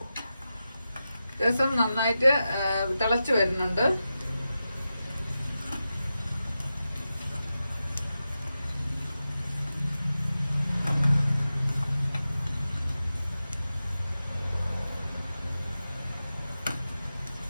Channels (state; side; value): inverted; both; correlation -0.92